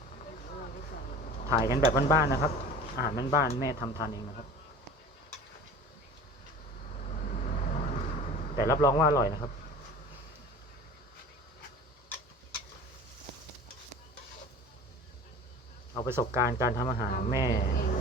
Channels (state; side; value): normal; both; correlation 0.40